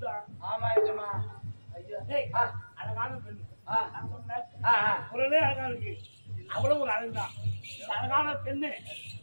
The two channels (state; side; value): inverted; both; correlation -1.00